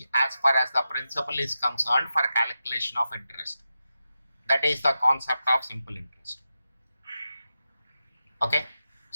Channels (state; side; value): inverted; both; correlation -0.90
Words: as far as the principal is concerned for calculation of interest. That is the concept of simple interest. Okay.